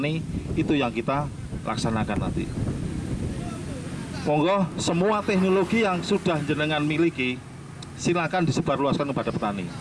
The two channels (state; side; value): identical; both; correlation 1.00